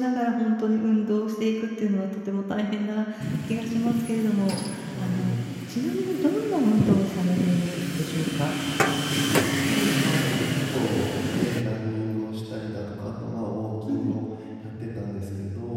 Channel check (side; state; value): both; identical; correlation 1.00